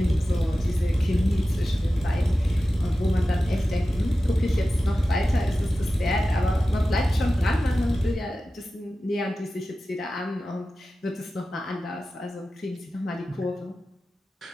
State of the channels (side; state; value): both; normal; correlation 0.94